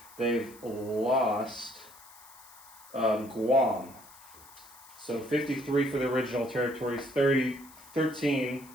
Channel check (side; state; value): left; noise; hiss, 21 dB below the sound